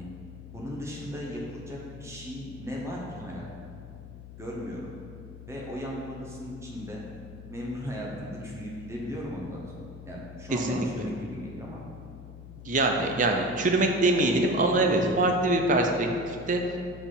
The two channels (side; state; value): left; noise; hum, 14 dB below the sound